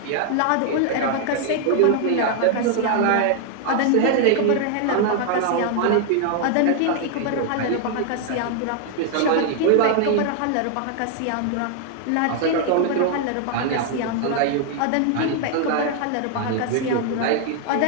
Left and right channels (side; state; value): both; different; correlation 0.00